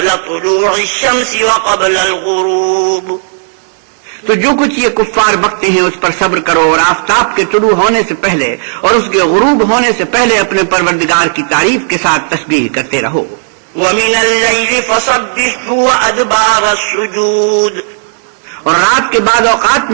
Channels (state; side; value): silent; left; digital silence